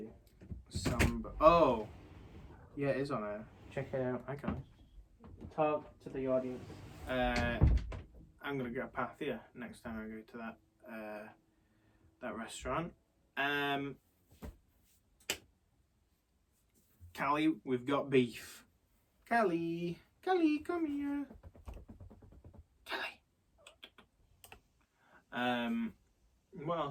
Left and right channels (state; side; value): identical; both; correlation 1.00